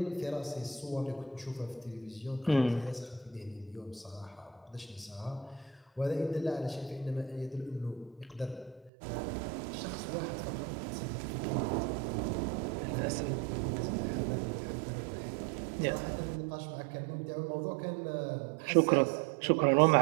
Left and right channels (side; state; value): left; drops out; at 8.9 s